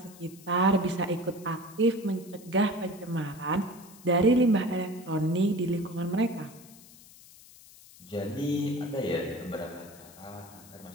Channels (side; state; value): left; noise; hiss, 21 dB below the sound